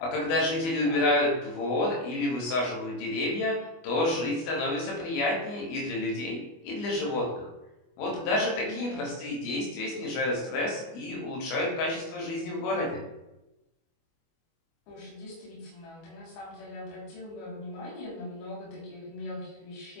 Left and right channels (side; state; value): right; late; 24 ms